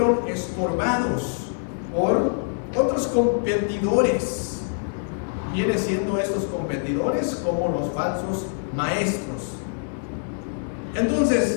estorbados por otros competidores. Viene siendo estos competidores como los falsos maestros.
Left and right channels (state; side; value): silent; right; 62 dB below the other